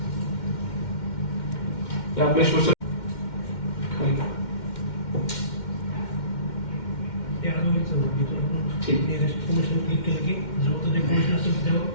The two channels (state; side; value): late; right; 2.1 ms